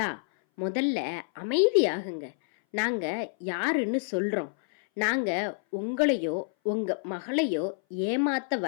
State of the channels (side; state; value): right; silent; 58 dB below the other